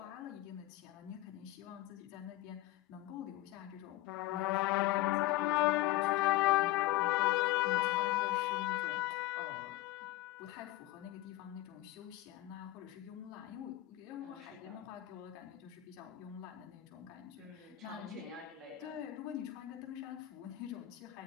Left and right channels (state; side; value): quieter; right; 16.5 dB